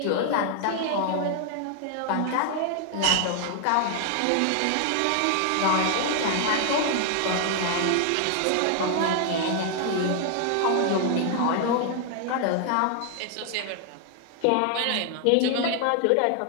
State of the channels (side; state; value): both; different; correlation 0.00